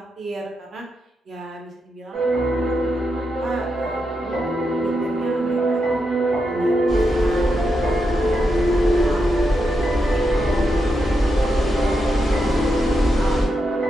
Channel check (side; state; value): both; normal; correlation 0.85